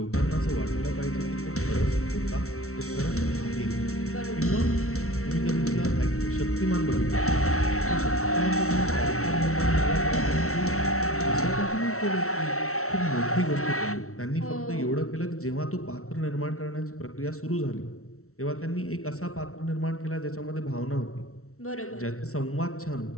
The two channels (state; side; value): late; right; 0.63 ms